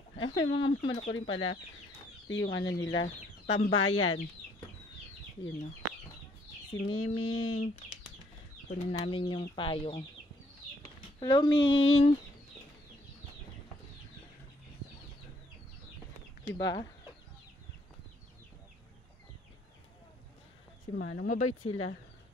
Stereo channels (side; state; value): both; normal; correlation 0.66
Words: Ay, may mga manok ko rin pala. Ito yung ano nila, tambayan. Yun o. Si Miming. Kunin namin yung payong. Hello, Ming! Diba? Si Manong, mabait sila.